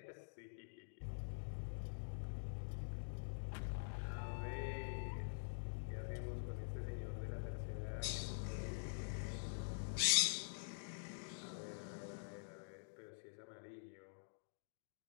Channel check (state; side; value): silent; right; digital silence